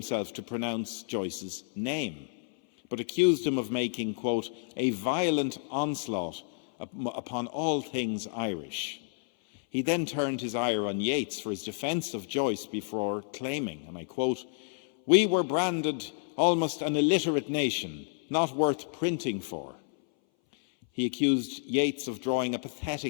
to pronounce Joyce's name, but accused him of making, quote, "a violent onslaught upon all things Irish." He then turned his ire on Yeats for his defence of Joyce before claiming, and I quote, "We were branded almost an illiterate nation, not worth printing for." He accused Yeats of drawing a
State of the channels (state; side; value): silent; right; 58 dB below the other